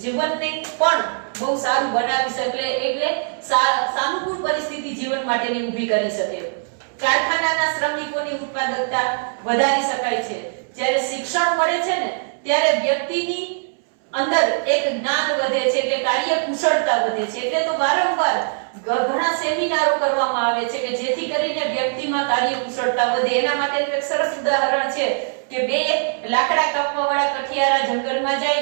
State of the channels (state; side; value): silent; left; 65 dB below the other